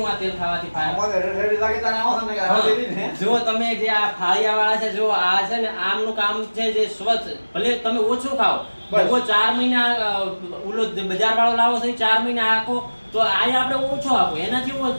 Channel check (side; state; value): both; inverted; correlation -1.00